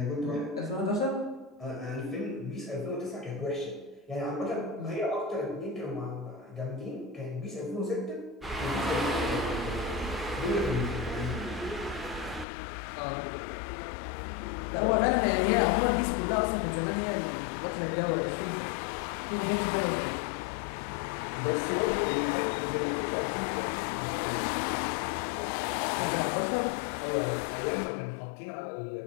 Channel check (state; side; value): drops out; right; at 12.5 s